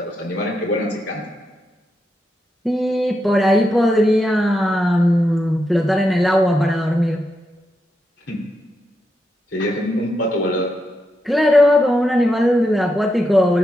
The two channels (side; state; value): both; normal; correlation 0.84